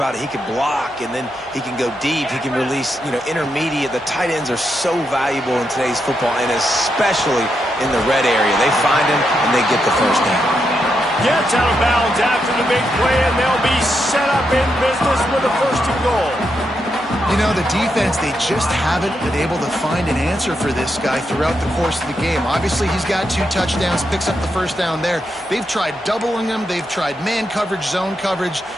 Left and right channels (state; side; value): normal; both; correlation 0.83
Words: it, he can block, and then he can go deep. He can release, intermediate. The tight ends are so valuable in today's football, and especially in the red area. They find him, and they get the first down. Gets out of bounds after the big play, and they'll be set up in business with a 1st and goal. You know, the defense, they just haven't been able to find an answer for this guy throughout the course of the game. Obviously, he's got 2 touchdowns, picks up the first down there. They've tried doubling him. They've tried man coverage, zone coverage.